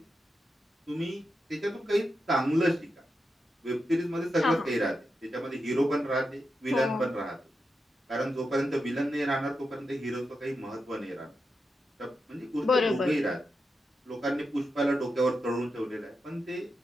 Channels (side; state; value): both; normal; correlation 0.87